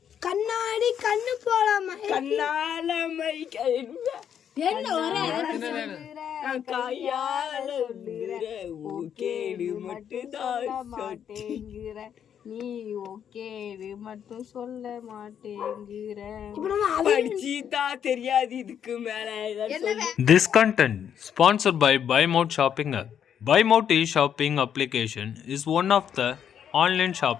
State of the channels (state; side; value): quieter; right; 8.7 dB